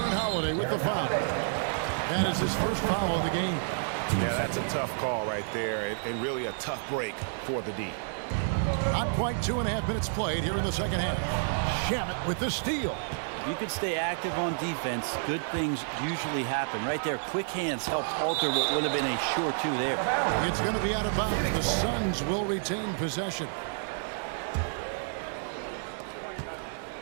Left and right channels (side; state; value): left; silent; digital silence